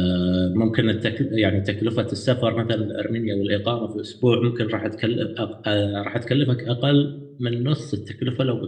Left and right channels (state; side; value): identical; both; correlation 1.00